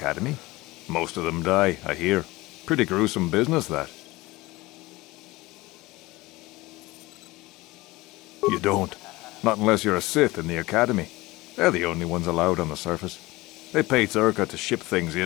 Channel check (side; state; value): right; quieter; 20.5 dB